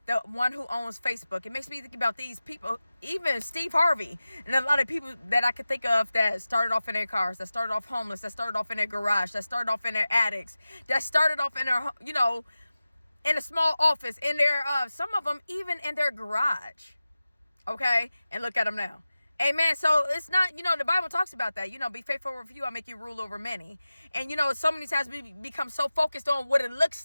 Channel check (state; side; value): inverted; both; correlation -0.95